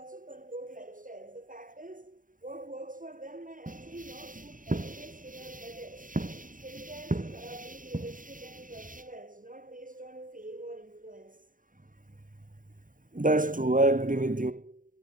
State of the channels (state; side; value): late; left; 0.39 ms